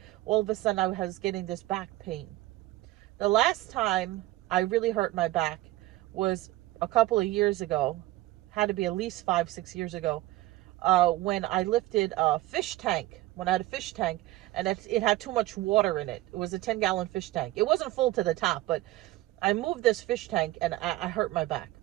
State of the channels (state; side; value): quieter; left; 17.2 dB